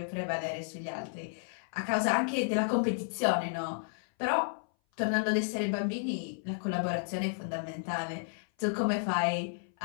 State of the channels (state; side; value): silent; right; 56 dB below the other